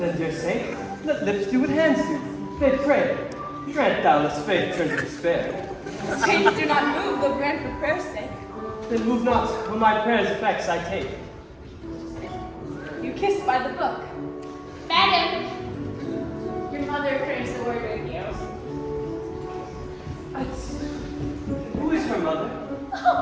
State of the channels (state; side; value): identical; both; correlation 1.00